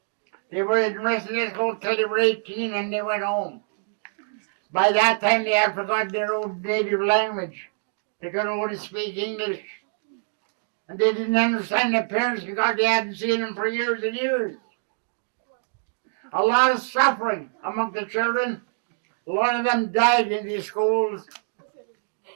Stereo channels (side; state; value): left; silent; digital silence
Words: They were in residential school till they were 18 and they went home. By that time, they had forgotten their own native language. They could only speak English. And they didn't understand their parents because they hadn't seen them for years and years. A lot of suffering among the children. A lot of them died in these schools.